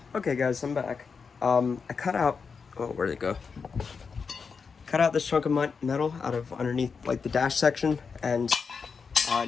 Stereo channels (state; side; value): quieter; right; 5.5 dB